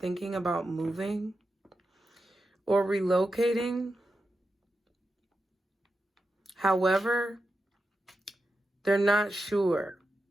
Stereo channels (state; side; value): normal; both; correlation 0.89